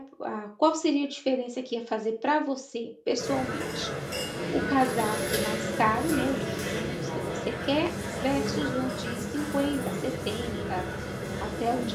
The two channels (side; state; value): both; identical; correlation 1.00